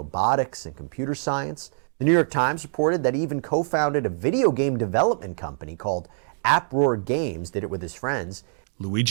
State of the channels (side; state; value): left; silent; 59 dB below the other